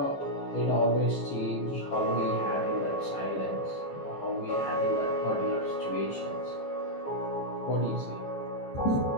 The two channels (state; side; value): late; right; 15 ms